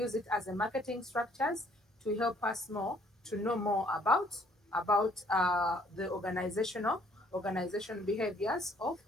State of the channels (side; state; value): both; normal; correlation 0.62